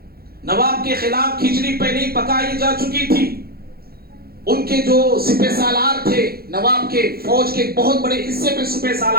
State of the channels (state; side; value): late; left; 0.44 ms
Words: نواب کے خلاف کھچڑی پہلے ہی پکائی جا چکی تھی. ان کے جو سپہ سالار تھے، نواب کے فوج کے بہت بڑے حصے پہ سپہ